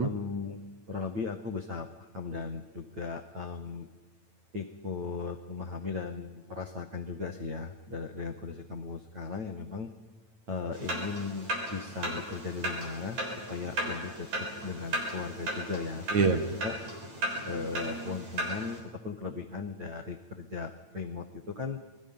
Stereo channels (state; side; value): late; left; 9.0 ms